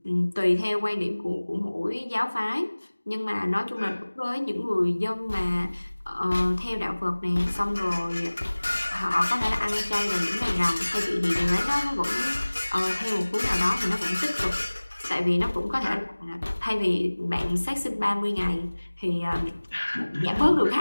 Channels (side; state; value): both; inverted; correlation -1.00